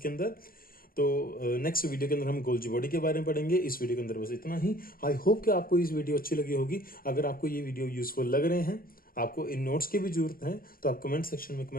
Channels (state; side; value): late; right; 0.42 ms